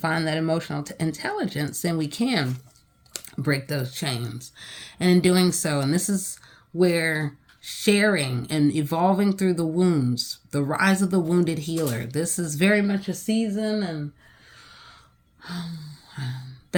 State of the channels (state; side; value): identical; both; correlation 1.00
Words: that emotional intelligence, then we can break those chains. And in doing so, and this is where sharing and evolving through the wounds, the rise of the wounded healer. This is very much a season, and